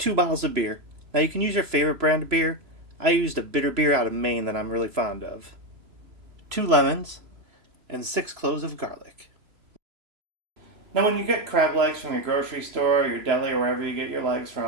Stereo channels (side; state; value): left; late; 3.0 ms